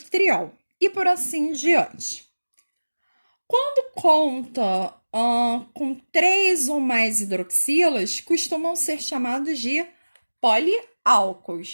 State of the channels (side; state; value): both; inverted; correlation -1.00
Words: e por assim diante. Quando conta com três ou mais hidroxilas, costumam ser chamados de